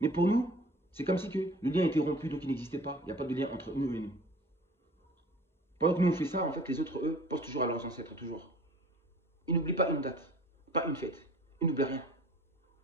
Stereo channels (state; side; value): normal; both; correlation 0.47